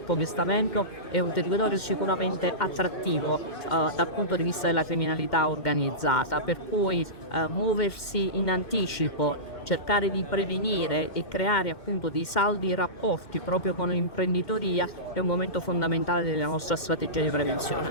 che sta avendo, è un territorio sicuramente attrattivo dal punto di vista della criminalità organizzata, per cui muoversi in anticipo, cercare di prevenire e creare appunto dei saldi rapporti proprio con l'imprenditoria è un momento fondamentale della nostra strategia di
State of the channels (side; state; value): right; late; 2.1 ms